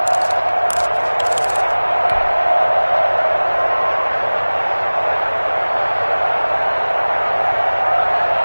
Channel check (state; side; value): inverted; both; correlation -1.00